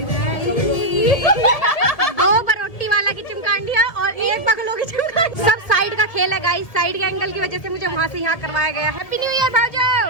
दो बरोटी वाला की चिमकांडिया और एक बगलों की चिमकांडी। सब साइड का खेल है गाइस, साइड के एंगल की वजह से मुझे वहाँ से यहाँ करवाया गया। हैप्पी न्यू ईयर भाऊजा।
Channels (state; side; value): late; right; 1.7 ms